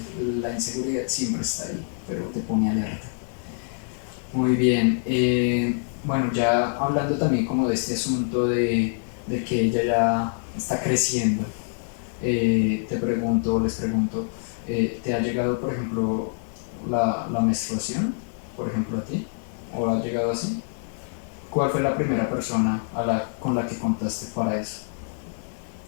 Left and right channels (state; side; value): silent; right; digital silence